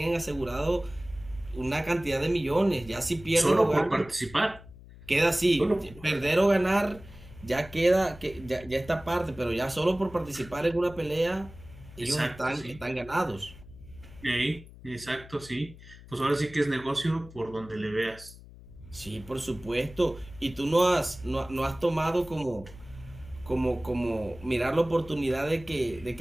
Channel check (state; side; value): noise; left; hum, 19 dB below the sound